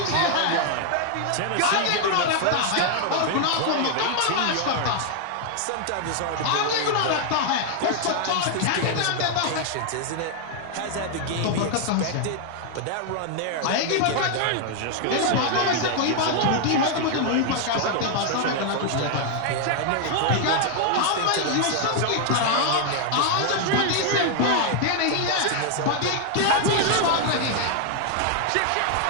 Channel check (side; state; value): both; different; correlation 0.00